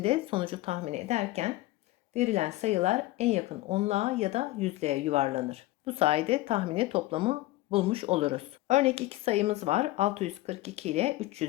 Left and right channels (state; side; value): quieter; right; 17.9 dB